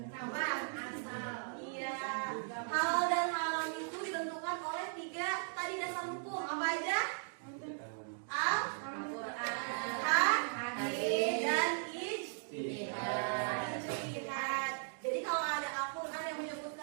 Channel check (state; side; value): silent; left; digital silence